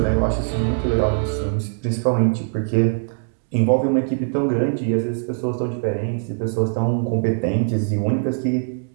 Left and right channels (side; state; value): left; silent; digital silence